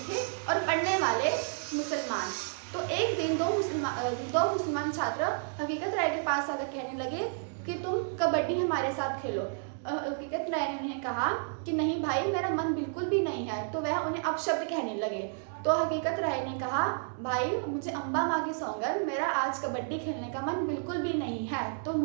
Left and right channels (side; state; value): left; silent; digital silence